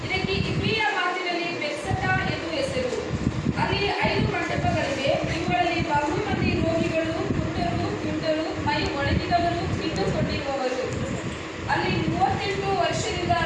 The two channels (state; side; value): identical; both; correlation 1.00